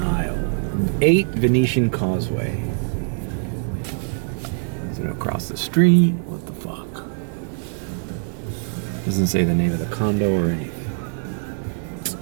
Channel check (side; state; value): left; silent; 64 dB below the other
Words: Isle. 8 Venetian Causeway. Is it across the street? What the fuck? Doesn't say the name of the condo or anything.